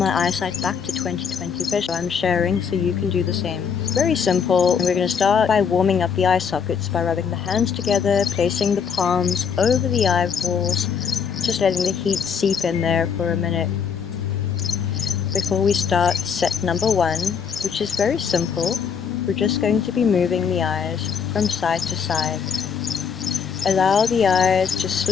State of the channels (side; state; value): right; quieter; 6.8 dB